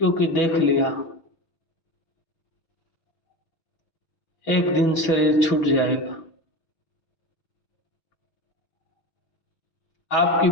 क्योंकि देख लिया एक दिन शरीर छूट जाएगा। आपकी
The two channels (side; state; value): right; late; 6.0 ms